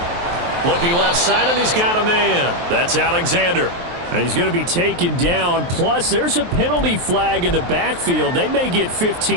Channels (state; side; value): late; left; 23 ms